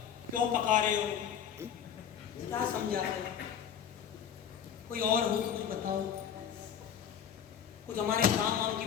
क्यों पका रहे हो, क्या समझा रहे हो, कोई और हो तो कुछ बताओ, कुछ हमारे काम वाम की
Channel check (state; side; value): quieter; right; 8.6 dB